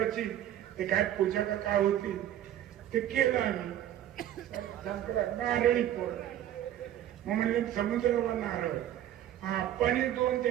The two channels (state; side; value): quieter; left; 11.7 dB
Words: ते काय पूजा का काय होती ते केलं आम्ही. नारळी पोर मग म्हणजे समुद्रावर नारळ. अप्पाने 2